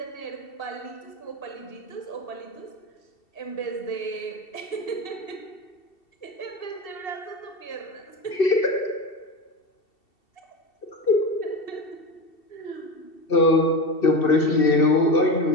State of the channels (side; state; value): right; late; 2.7 ms